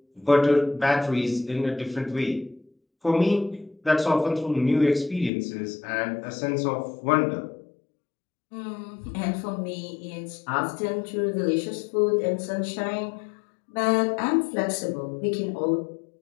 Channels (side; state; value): right; drops out; at 5.3 s